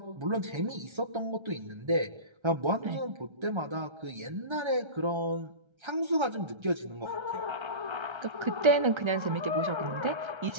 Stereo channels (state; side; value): late; left; 1.3 ms